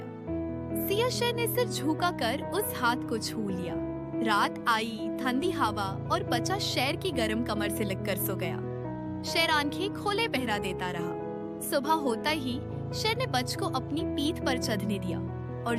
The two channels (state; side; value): identical; both; correlation 1.00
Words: सियाह शेर ने सिर झुका कर उस हाथ को छू लिया। रात आई, ठंडी हवा और बच्चा शेर की गर्म कमर से लगकर सो गया। शेर आंखें खोले पहरा देता रहा। सुबह होता ही शेर ने बच्चे को अपनी पीठ पर चढ़ने दिया और